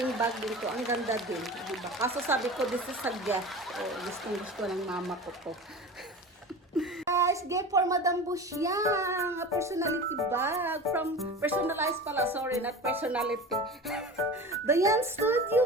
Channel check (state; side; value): normal; both; correlation 0.33